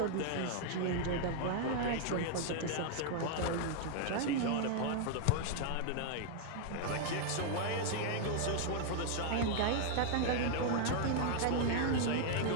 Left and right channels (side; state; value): both; different; correlation 0.00